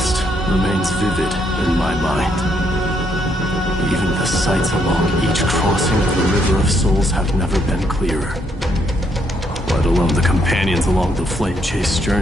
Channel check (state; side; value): normal; both; correlation 0.73